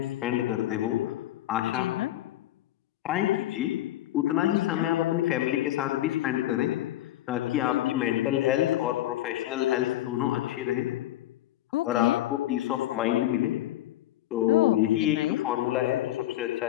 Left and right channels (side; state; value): right; quieter; 14.3 dB